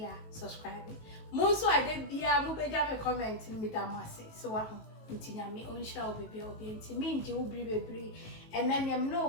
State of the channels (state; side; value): late; right; 18 ms